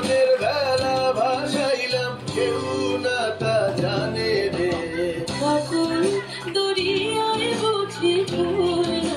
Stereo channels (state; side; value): identical; both; correlation 1.00